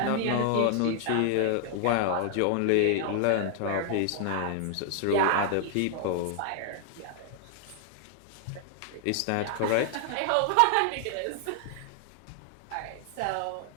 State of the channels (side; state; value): both; different; correlation 0.00